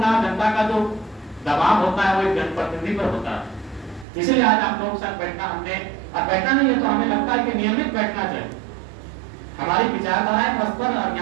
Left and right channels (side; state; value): left; drops out; at 4.0 s